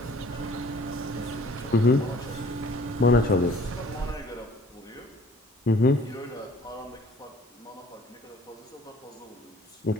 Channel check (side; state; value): both; normal; correlation 0.53